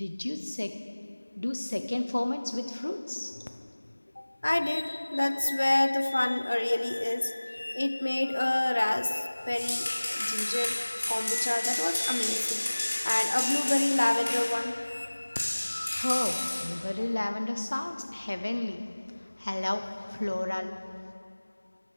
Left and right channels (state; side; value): inverted; both; correlation -1.00